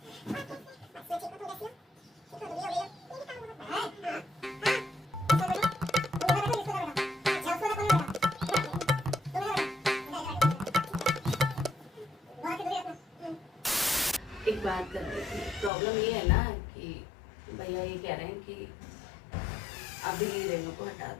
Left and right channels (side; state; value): right; drops out; at 15.7 s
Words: एक बात कर रही थी, प्रॉब्लम ये है ना कि भैया ये कह रहे हैं कि अभी रेनू को हटा